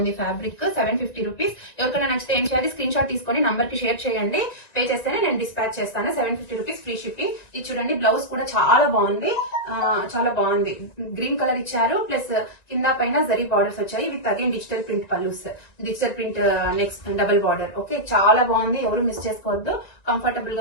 Fabric 750 rupees. ఎవరికైనా నచ్చితే ఏం చేయాలి, స్క్రీన్ షాట్ తీసుకొని నంబర్ కి షేర్ చేయండి. పే చేస్తేనే నేను డిస్పాచ్ చేస్తాను. 750 రూపీస్ ఫ్రీ షిప్పింగ్. ఇది చూడండి, బ్లౌజ్ కూడా చాలా బాగుంది. చాలా బాగుంది. గ్రీన్ కలర్ ఇచ్చారు, ప్లస్ కింద పైన జరీ బార్డర్స్ వచ్చాయి with again digital print pallus, digital print next double border, okay. చాలా బాగుంది, ఎవరు మిస్ చేసుకోవద్దు. కంఫర్టబుల్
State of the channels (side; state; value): right; late; 1.9 ms